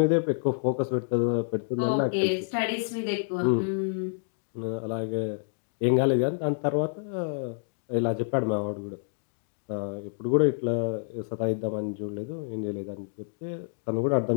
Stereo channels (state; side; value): silent; right; digital silence